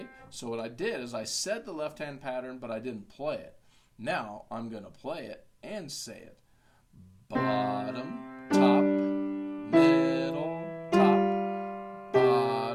so what I did is I said the left-hand pattern, but I didn't play it. Now I'm going to play it and say it. Bottom, top, middle, top,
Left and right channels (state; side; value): identical; both; correlation 1.00